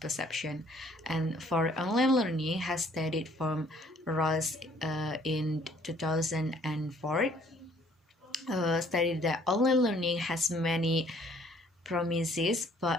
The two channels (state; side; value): normal; both; correlation 0.60